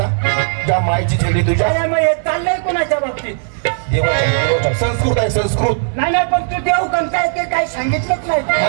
ज्या मायची चेहरी तुझ्या अरे मग हे चाललंय कुणाच्या बाबतीत देवाच्या संस्कृत आहे संस्कृत नाही नाही पण तू देऊ पण काय ते काय सांगितलंच नाही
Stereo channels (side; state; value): left; silent; digital silence